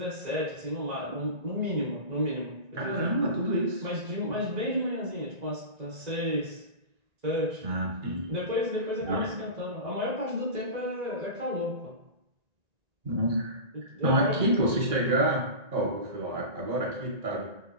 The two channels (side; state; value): left; late; 1.9 ms